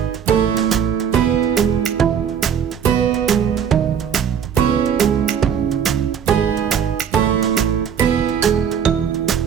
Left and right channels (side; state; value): left; quieter; 8.0 dB